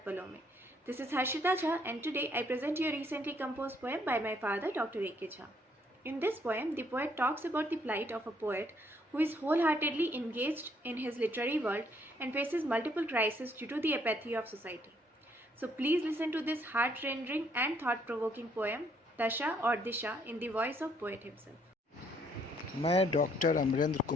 Paloं Mein. This is Harshita Jha and today I present you a recently composed poem by my father Dr. A.K. Jha. In this poem, the poet talks about the plight of a poet who is wholeheartedly engaged in his literary world and faces multiple crises due to the apathy of society. So please listen to this heart-rending and thought-provoking poem, Dasha or Disha, in the voice of poet himself. मैं doctor Amarendra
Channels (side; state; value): both; normal; correlation 0.68